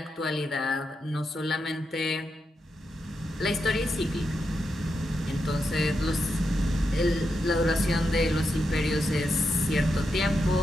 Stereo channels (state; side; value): normal; both; correlation 0.86